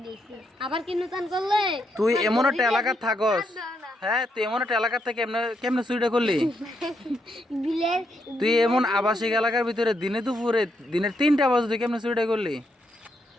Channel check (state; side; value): normal; both; correlation 0.79